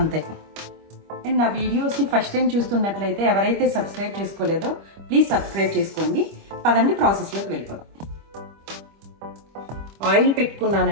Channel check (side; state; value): left; late; 25 ms